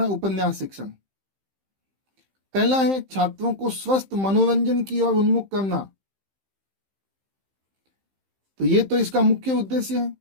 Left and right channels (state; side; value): late; left; 15 ms